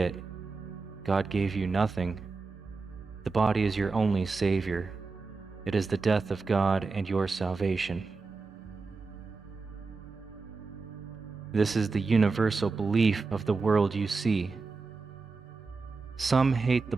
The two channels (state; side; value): quieter; left; 4.1 dB